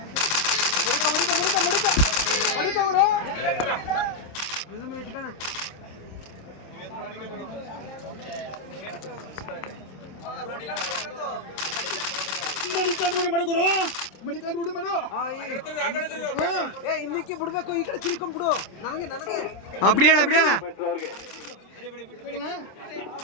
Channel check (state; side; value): late; right; 26 ms